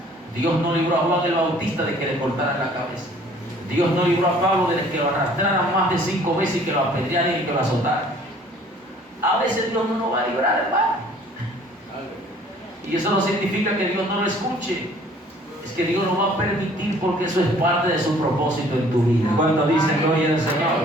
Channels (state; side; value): normal; both; correlation 0.55